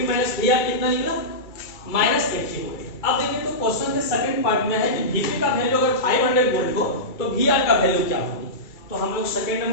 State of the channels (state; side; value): late; right; 2.3 ms